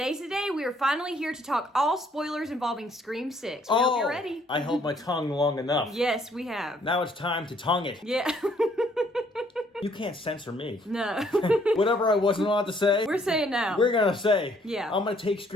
the day we are finally here to talk all spoilers involving Scream 6. We hope you're ready. I held my tongue long enough. Yes, we have. Now it's time to tongue it. Yeah. You can't censor me. No. Whatever I wasn't allowed to say, We're saying now. we're going to say. Yeah. I'm going to take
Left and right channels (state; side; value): normal; both; correlation 0.65